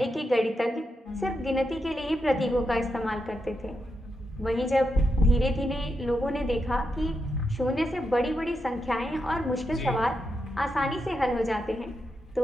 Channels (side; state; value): both; normal; correlation 0.85